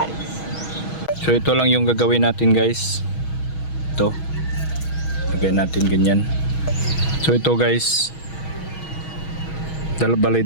So ito lang yung gagawin natin guys. Ito. Lagay natin ganyan. So ito guys, balay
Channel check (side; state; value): right; late; 6.3 ms